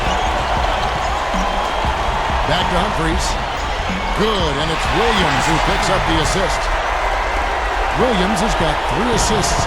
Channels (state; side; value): identical; both; correlation 1.00